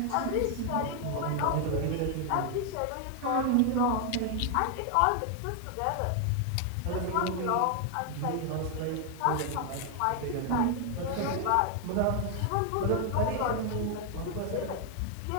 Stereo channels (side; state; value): both; different; correlation 0.00